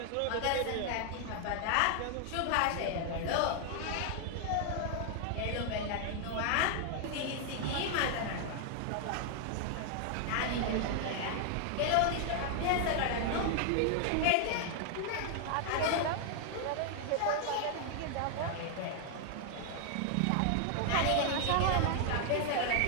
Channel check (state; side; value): different; both; correlation 0.00